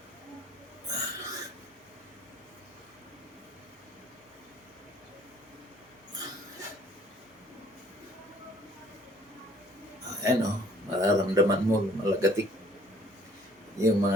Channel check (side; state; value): both; normal; correlation 0.58